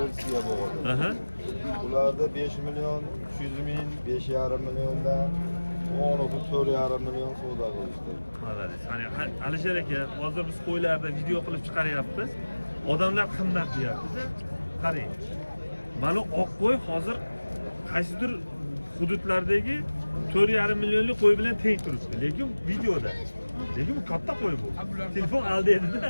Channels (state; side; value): inverted; both; correlation -1.00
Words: bo'ladi. Aha. Ularda 5 million 300 ming, 5,5 milliondan 4,5 million savdo qilishdi. Malades. Hani Alisher aka, hozir biz qo'ylarda video qilib chiqaryapmiz. Odamlar qimmat deyapti. Qarang. Mana oq qo'y hozir qaysidir hududlardagi 4,5 millionlik qo'y bilan teng turibdi. Lekin videoda. Lekin bu katta qo'y bu. Telefon aldaydi-da.